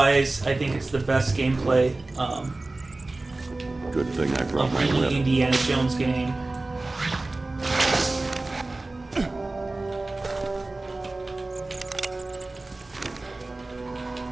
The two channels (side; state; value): left; quieter; 3.1 dB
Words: I think it's the best gameplay Good thing I brought of my any whip. Indiana Jones game.